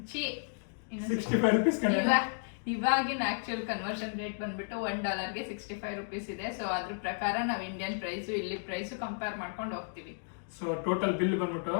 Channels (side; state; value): right; silent; digital silence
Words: ಇವಾಗಿನ ಆಕ್ಚುಲ್ ಕನ್ವರ್ಷನ್ ರೇಟ್ ಬಂದ್ಬಿಟ್ಟು $1ಗೆ $65 ಇದೆ. ಸೊ ಅದ್ರ ಪ್ರಕಾರ ನಾವು ಇಂಡಿಯನ್ ಪ್ರೈಸು ಇಲ್ಲಿ ಪ್ರೈಸು ಕಂಪೇರ್ ಮಾಡ್ಕೊಂಡು ಹೋಗ್ತೀವಿ. ಸೊ ಟೋಟಲ್ ಬಿಲ್ ಬಂದ್ಬಿಟ್ಟು